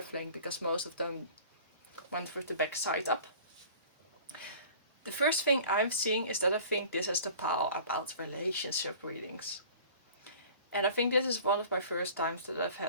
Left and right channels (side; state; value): both; inverted; correlation -0.45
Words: because most of them went with the back side up. The first thing I'm seeing is that I think this is the pile about relationship readings. And I think this is one of my first times that I've